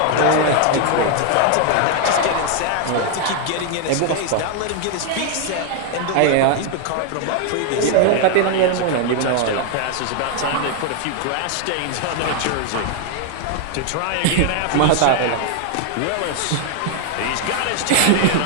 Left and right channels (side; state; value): both; different; correlation 0.00